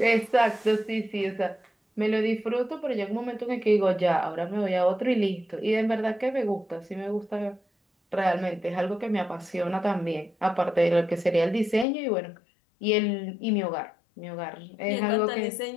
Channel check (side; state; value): right; drops out; at 11.9 s